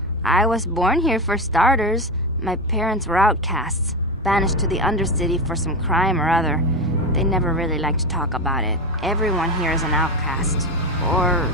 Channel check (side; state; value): both; normal; correlation 0.17